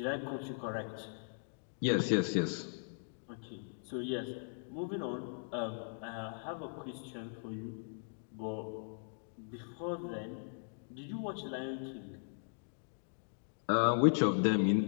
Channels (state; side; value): silent; right; digital silence